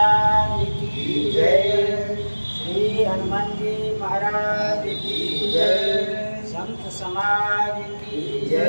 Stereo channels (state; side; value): inverted; both; correlation -1.00